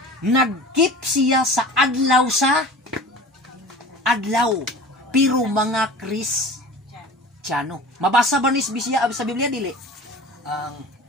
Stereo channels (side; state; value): both; normal; correlation 0.39